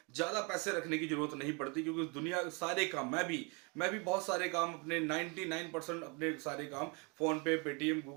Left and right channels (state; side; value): quieter; left; 31.1 dB